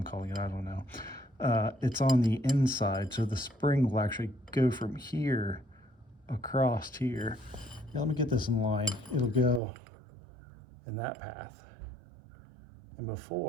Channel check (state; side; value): drops out; left; at 9.6 s